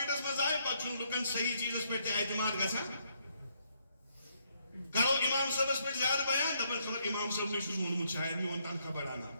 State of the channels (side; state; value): both; inverted; correlation -0.73